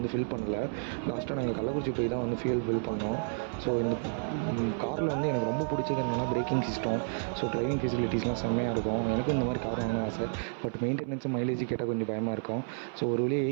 ஃபில் பண்ணலை. லாஸ்ட்டாக நாங்கள் கள்ளக்குறிச்சி போய் தான் வந்து ஃபில் பண்ணோம். ஸோ இந்த காரில் வந்து எனக்கு ரொம்ப பிடிச்சது என்னென்னா பிரேக்கிங் சிஸ்டம். ஸோ டிரைவிங் ஃபெசிலிட்டிஸ்லாம் செம்மையாக இருக்கும். எனக்கும் இந்த மாதிரி கார் வாங்கணும்னு ஆசை. பட் மெயின்டெனன்ஸும் மைலேஜ் கேட்டால் கொஞ்சம் பயமாக இருக்கும். ஸோ ஒரு வழியாக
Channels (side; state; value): left; silent; 57 dB below the other